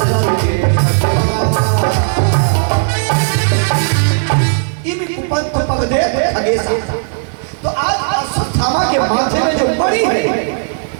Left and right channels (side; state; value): left; silent; digital silence